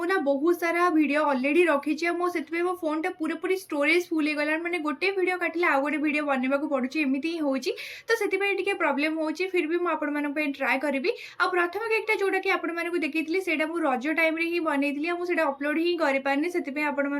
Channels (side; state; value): both; identical; correlation 1.00